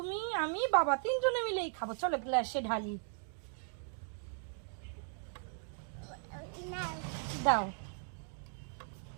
আমি বাবা তিনজনে মিলেই খাবো। চলো গ্লাসে ঢালি। না দাও।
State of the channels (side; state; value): left; silent; 53 dB below the other